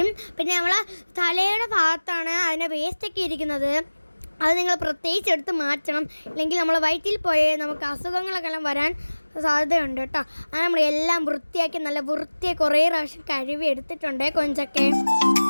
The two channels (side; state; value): both; inverted; correlation -1.00